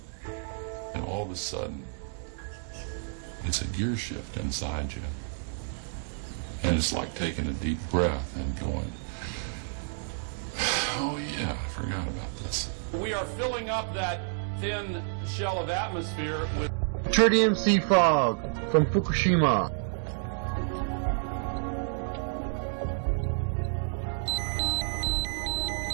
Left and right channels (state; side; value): silent; left; digital silence